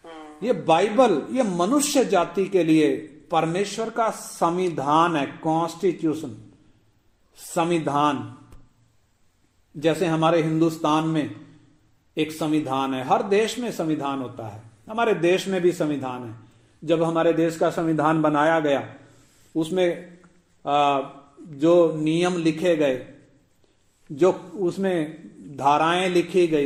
ये बाइबल ये मनुष्य जाति के लिए परमेश्वर का संविधान है, कॉन्स्टिट्यूशन, संविधान। जैसे हमारे हिंदुस्तान में एक संविधान है, हर देश में संविधान होता है, हमारे देश में भी संविधान है। जब हमारे देश का संविधान बनाया गया उसमें जो नियम लिखे गए, जो उसमें धाराएं लिखी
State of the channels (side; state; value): both; identical; correlation 1.00